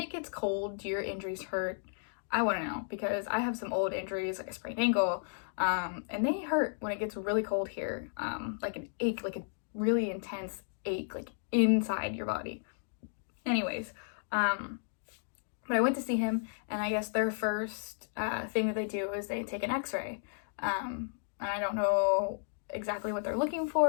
gets cold, do your injuries hurt? I want to know, because I have some old injuries, like a sprained ankle, and they hurt when it gets really cold here, like an ache, like a really intense ache, like inside your body. Anyways, but I went to see him, and I guess their first thing that they do is they take an x-ray, and I don't know exactly what they're looking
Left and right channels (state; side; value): silent; right; digital silence